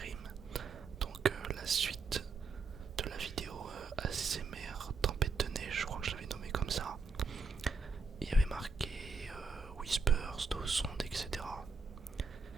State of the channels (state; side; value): quieter; left; 4.4 dB